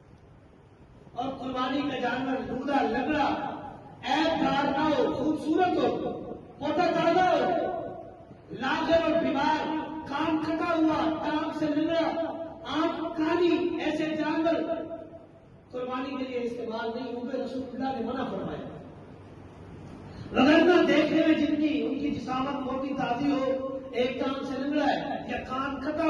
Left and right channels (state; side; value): identical; both; correlation 1.00